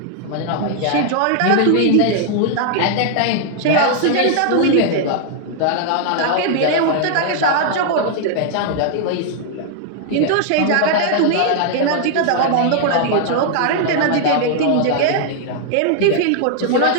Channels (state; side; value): different; both; correlation -0.01